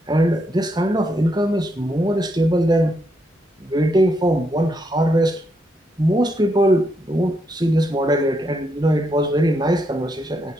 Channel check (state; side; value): normal; both; correlation 0.79